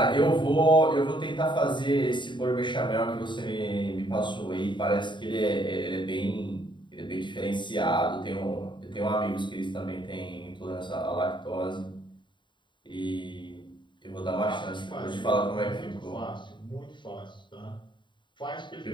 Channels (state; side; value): late; right; 0.23 ms